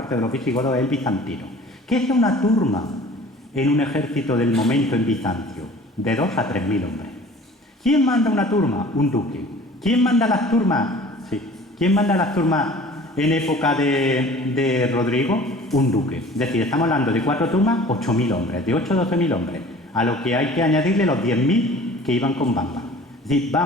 de los visigodos es el bizantino. ¿Qué es una turma en un ejército del momento en Bizancio? De 2 a 3.000 hombres. ¿Quién manda una turma? Un duque. ¿Quién manda las turmas? Sí. ¿Quién manda las turmas en época de Rodrigo? Un duque. Es decir, estamos hablando de 4 turmas, 8.000 hombres, de 8 a 12.000 hombres, a lo que hay que añadirle los 10.000 que iban con Bamba. Es decir,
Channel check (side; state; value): both; normal; correlation 0.46